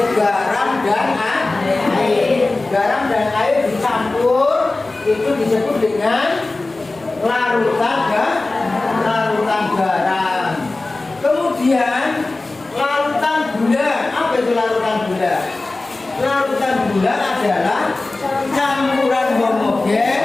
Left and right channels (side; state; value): right; quieter; 3.2 dB